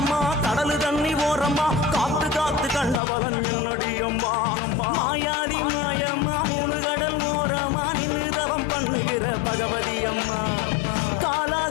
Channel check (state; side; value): drops out; right; at 3.0 s